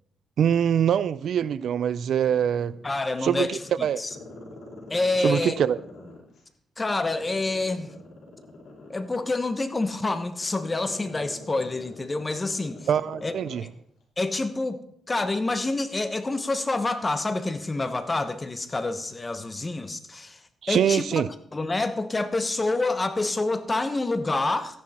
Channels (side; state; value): both; normal; correlation 0.82